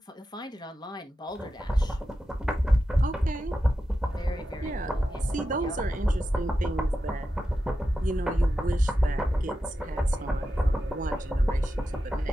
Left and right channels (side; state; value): both; normal; correlation 0.90